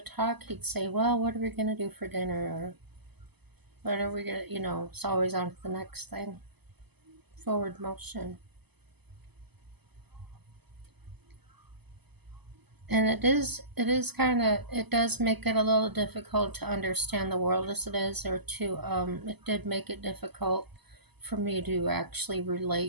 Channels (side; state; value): left; late; 0.99 ms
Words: He'd say, "Well, what are we gonna do for dinner?" Or what are we gonna, it's always on to the next thing. Forward motion. And it does make it a little difficult to understand the world as it is, or to, it did make it difficult for me to actually